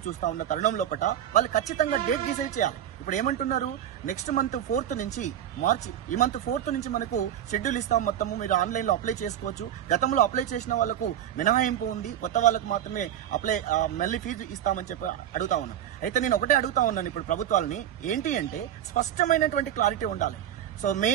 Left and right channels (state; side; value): quieter; left; 10.6 dB